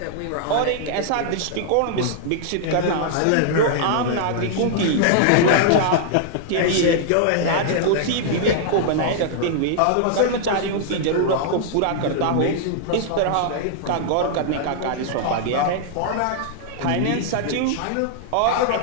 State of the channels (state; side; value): different; both; correlation -0.01